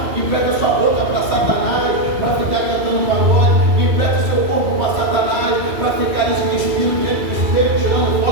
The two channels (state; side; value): late; left; 2.6 ms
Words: empresta sua boca para Satanás, para ficar cantando pagode, empresta seu corpo para Satanás, para ficar nesse espírito dentro do espelho, tirando